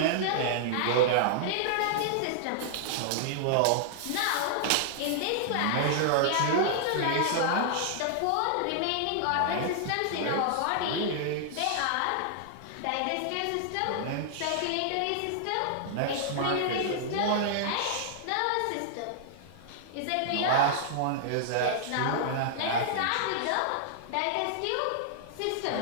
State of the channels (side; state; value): both; different; correlation -0.01